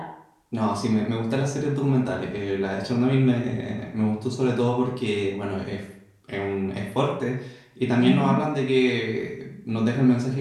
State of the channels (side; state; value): both; identical; correlation 1.00